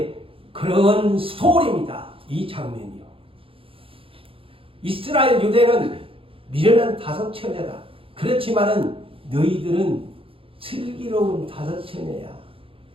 그런 스토리입니다. 이 장면이요. 이스라엘 유대는 미련한 다섯 처녀다. 그렇지만은 너희들은 슬기로운 다섯 처녀야.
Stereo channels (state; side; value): late; left; 0.27 ms